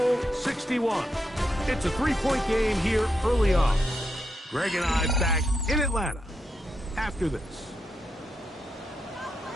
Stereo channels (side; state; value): both; normal; correlation 0.84